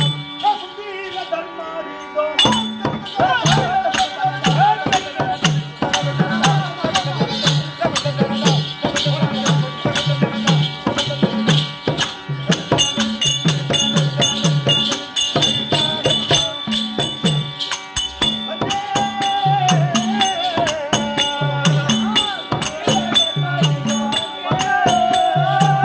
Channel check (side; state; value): both; identical; correlation 1.00